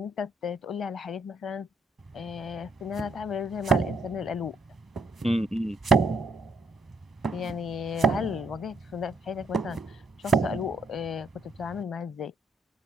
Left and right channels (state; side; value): normal; both; correlation 0.72